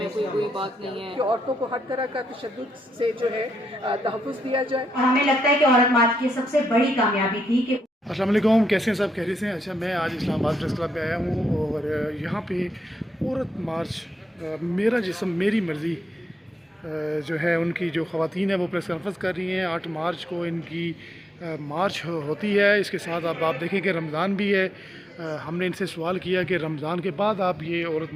کوئی بات نہیں ہے کہ عورتوں کو ہر طرح کا تشدد سے جو ہے تحفظ دیا جائے. اور ہمیں لگتا ہے کہ عورت مارچ کی سب سے بڑی کامیابی تھی کہ السلام علیکم، کیسے ہیں سب؟ خیریت سے ہیں؟ اچھا، میں آج اسلام آباد پریس کلب پہ آیا ہوں اور یہاں پہ عورت مارچ میرا جسم میری مرضی جو ہے ان کی جو خواتین ہیں وہ پریس کانفرنس کر رہی ہیں. 8 مارچ کو ان کی مارچ ہوتی ہے. اس کے ساتھ اب آپ دیکھیں کہ رمضان بھی ہے. ہم نے ان سے سوال کیا کہ رمضان کے بعد آپ یہ عورت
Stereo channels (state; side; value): normal; both; correlation 0.81